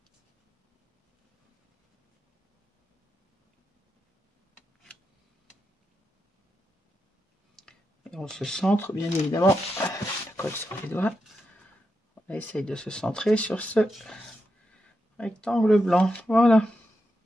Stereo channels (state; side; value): normal; both; correlation 0.86